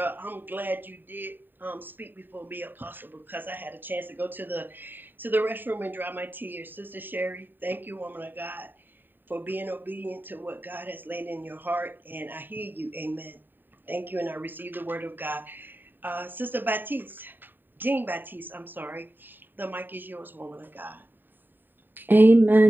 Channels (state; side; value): late; left; 0.092 ms